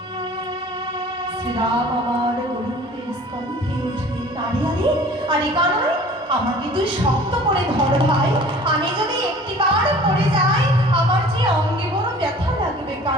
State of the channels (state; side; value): normal; both; correlation 0.47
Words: শ্রীরাম আমার গোবিন্দের স্কন্ধে উঠলেন। আরে আরে আরে কানাই, আমাকে তুই শক্ত করে ধর ভাই, আমি যদি একটিবার পড়ে যাই আমার যে অঙ্গে বড় ব্যথা লাগবে